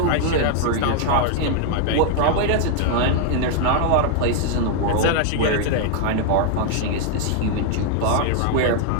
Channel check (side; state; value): both; different; correlation 0.00